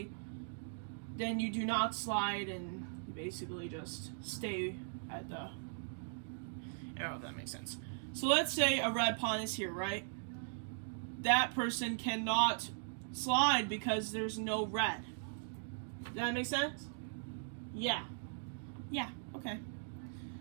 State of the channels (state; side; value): silent; left; digital silence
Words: do not slide and you basically just stay at the arrow, if that makes sense. So let's say a red pawn is here, right? That person cannot slide because there's no red. Does that make sense? Yeah. Yeah, okay.